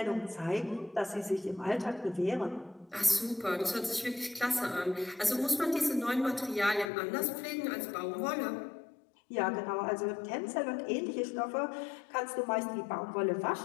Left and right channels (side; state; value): right; drops out; at 6.9 s